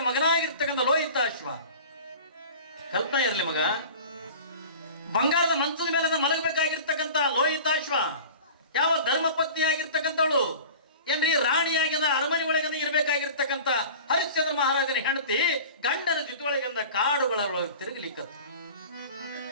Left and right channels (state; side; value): inverted; both; correlation -0.38